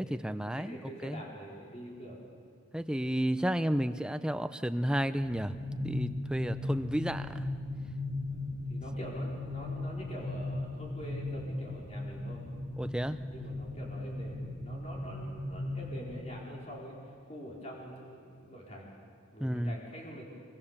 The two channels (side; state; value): both; normal; correlation 0.91